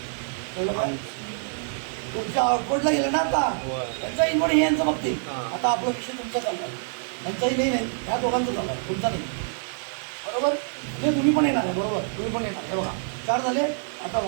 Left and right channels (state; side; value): silent; left; digital silence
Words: तुमच्या आउटवर्डला गेलं ना आता त्यांचा इनवर्ड हे यांचं बघतील. आता आपला विषय तुमचा चालला आहे, त्यांचाही नाही ह्या दोघांचं चालला आहे, तुमचा नाही. बरोबर म्हणजे तुम्ही पण येणार आहे. बरोबर तुम्ही पण येणार. हे बघा 4 झाले. आता